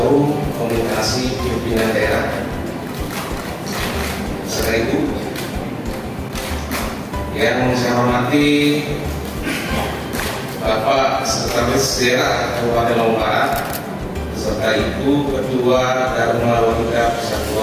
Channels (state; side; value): identical; both; correlation 1.00